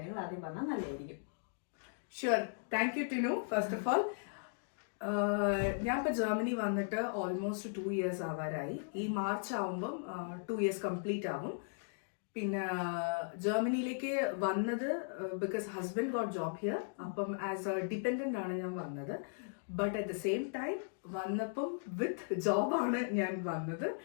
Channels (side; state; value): right; silent; digital silence